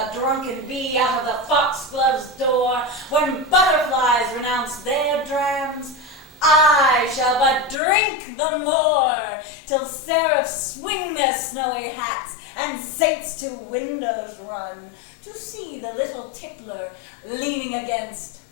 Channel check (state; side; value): drops out; right; at 7.8 s